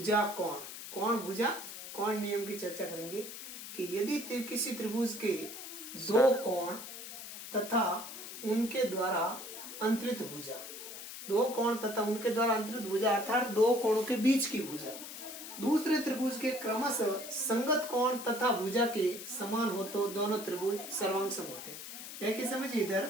कोण नियम की चर्चा करेंगे कि यदि किसी त्रिभुज के दो कोण तथा उनके द्वारा अंतरित भुजा अर्थात दो कोणों के बीच की भुजा दूसरे त्रिभुज के क्रमशः संगत कोण तथा भुजा के समान हो तो दोनों त्रिभुज सर्वांग सम होते हैं। देखिए समझिए,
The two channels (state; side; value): noise; left; hiss, 10 dB below the sound